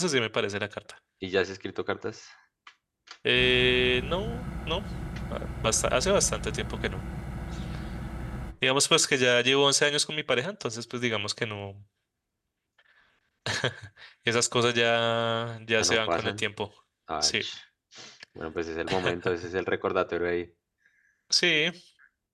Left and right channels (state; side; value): identical; both; correlation 1.00